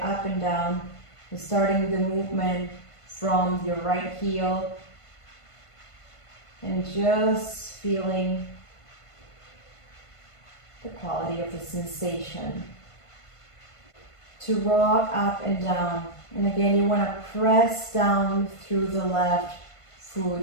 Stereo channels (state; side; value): late; right; 1.5 ms